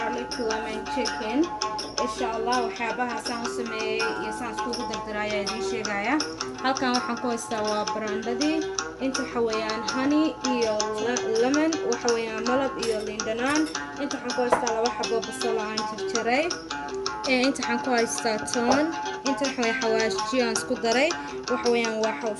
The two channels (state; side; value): identical; both; correlation 1.00